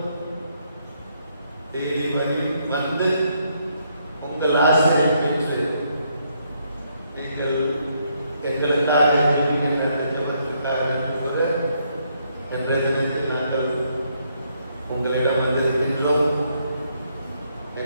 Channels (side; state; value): both; inverted; correlation -0.73